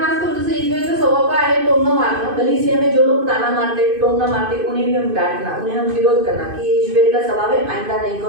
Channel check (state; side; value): late; left; 2.5 ms